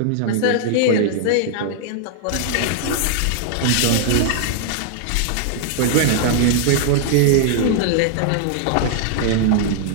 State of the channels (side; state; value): both; different; correlation -0.01